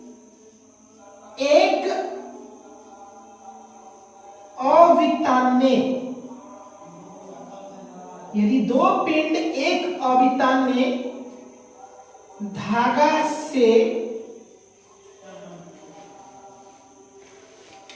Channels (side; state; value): both; identical; correlation 1.00